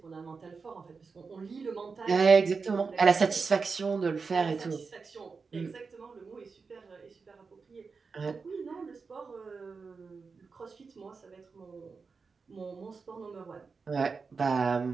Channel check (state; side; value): quieter; left; 4.8 dB